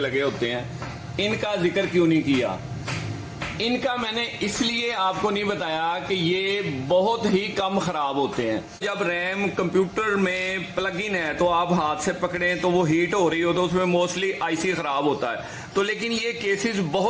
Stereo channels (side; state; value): both; identical; correlation 1.00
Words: होते हैं, इनका जिक्र क्यों नहीं किया। इनका मैंने इसलिए आपको नहीं बताया कि ये बहुत ही कम खराब होते हैं। जब रैम कंप्यूटर में प्लग इन है तो आप हाथ से पकड़ें तो वो हीट हो रही हो तो उसमें मोस्टली आईसी खराब होता है। तो लेकिन ये केसेस